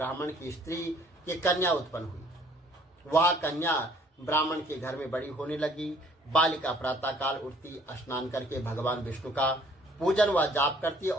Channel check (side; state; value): both; normal; correlation 0.59